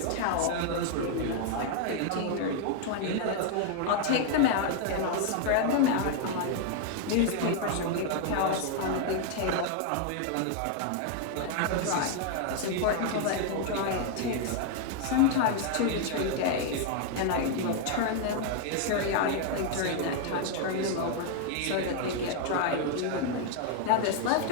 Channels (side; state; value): both; different; correlation 0.00